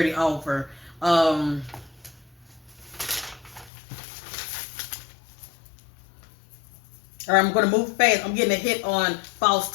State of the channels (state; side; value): drops out; right; at 3.7 s